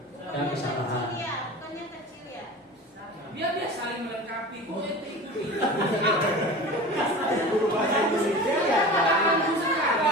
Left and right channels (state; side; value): normal; both; correlation 0.34